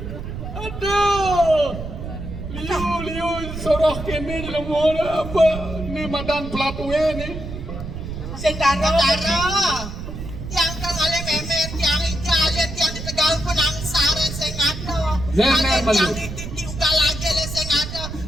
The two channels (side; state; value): right; noise; rumble, 8 dB below the sound